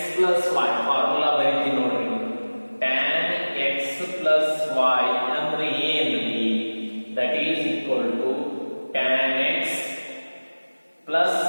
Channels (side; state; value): both; inverted; correlation -1.00